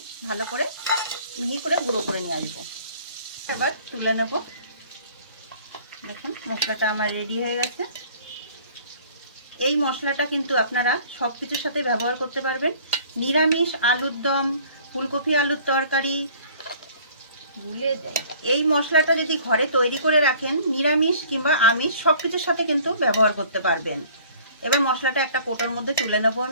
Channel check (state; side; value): inverted; both; correlation -0.52